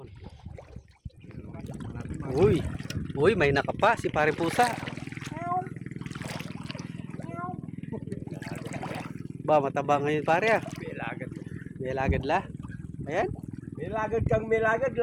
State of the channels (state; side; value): identical; both; correlation 1.00